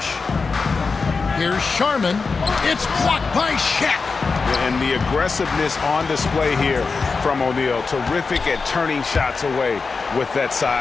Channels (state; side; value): quieter; right; 4.6 dB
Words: Here's Sharman. It's blocked by Shaq. And the aggressiveness on display here from O'Neal. Terrific at turning shots away with that